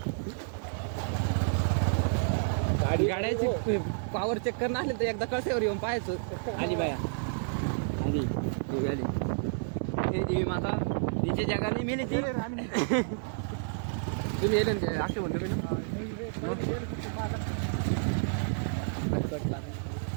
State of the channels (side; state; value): left; silent; 58 dB below the other